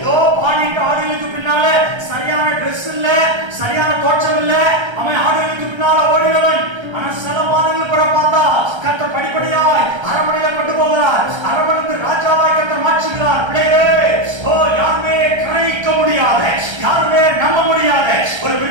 பாடிட்டு ஆடுகளுக்கு பின்னால சரியான ட்ரெஸ் இல்ல, சரியான தோற்றம் இல்ல, அவன் ஆடுகளுக்கு பின்னால ஓடினவன். ஆனா சில மாதங்கள் கூட பார்த்தா கர்த்தர் படிப்படியாய் அரண்மனையில கொண்டு போகிறார். அரண்மனை ராஜாவாய் கர்த்தர் மாற்றுகிறார். பிள்ளைகளே, யாருமே கிரகிக்க முடியாத, யாருமே நம்ப முடியாத ஒரு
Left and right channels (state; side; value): late; left; 1.3 ms